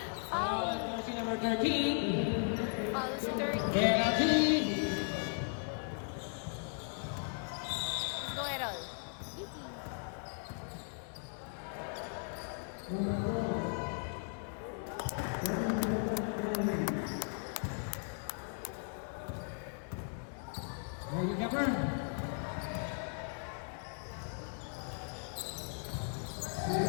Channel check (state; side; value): silent; right; 53 dB below the other